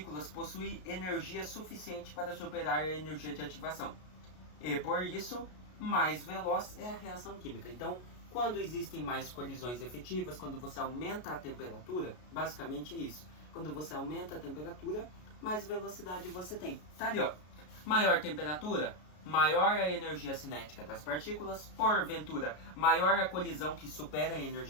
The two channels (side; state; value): right; late; 33 ms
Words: possui energia suficiente para superar a energia de ativação. E, por isso, mais veloz é a reação química. Então, quando existem mais colisões efetivas, quando você aumenta a temperatura, basicamente isso. Quando você aumenta a temperatura, mais velocidade você tem. Tá ali, ó. Maior temperatura, maior a energia cinética das partículas, porventura, maior a colisão que supera a